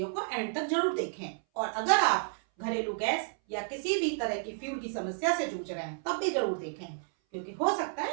को एंड तक जरूर देखें। और अगर आप घरेलू गैस या किसी भी तरह की फ्यूल की समस्या से जूझ रहे हैं तब भी जरूर देखें, क्योंकि हो सकता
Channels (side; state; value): left; silent; 57 dB below the other